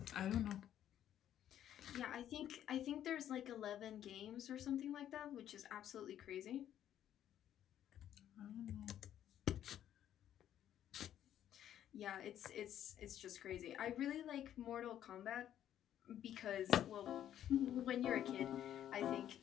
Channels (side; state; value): right; quieter; 10.9 dB